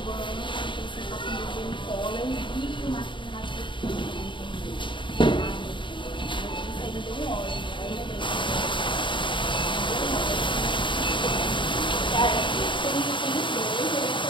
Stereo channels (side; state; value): right; late; 0.24 ms